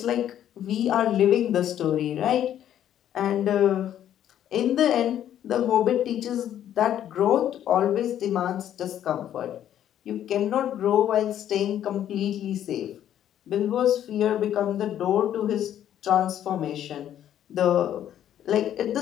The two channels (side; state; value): right; quieter; 10.8 dB